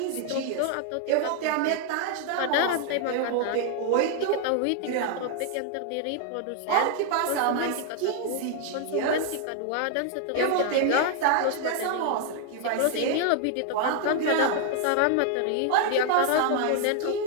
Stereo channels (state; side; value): different; both; correlation 0.00